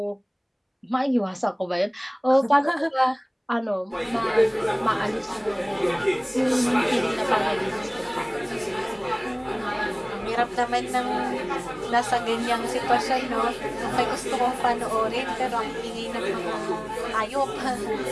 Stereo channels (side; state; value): both; identical; correlation 1.00